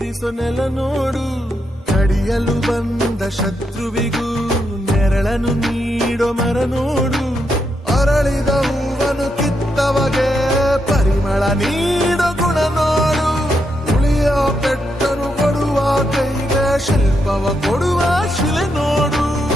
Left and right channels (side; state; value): both; normal; correlation 0.82